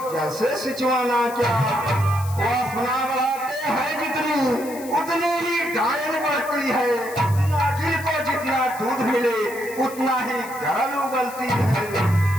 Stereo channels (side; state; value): left; noise; hiss, 16 dB below the sound